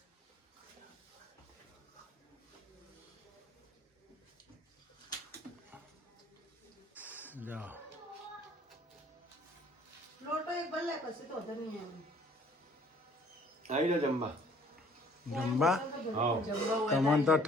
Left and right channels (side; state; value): both; normal; correlation 0.57